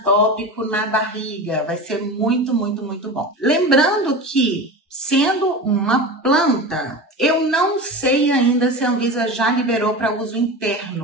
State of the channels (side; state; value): both; normal; correlation 0.28